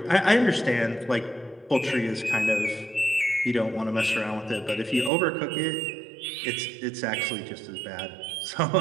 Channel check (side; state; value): left; drops out; at 5.1 s